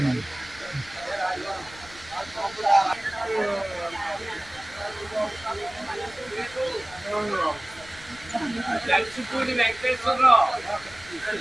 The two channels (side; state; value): left; noise; rumble, 21 dB below the sound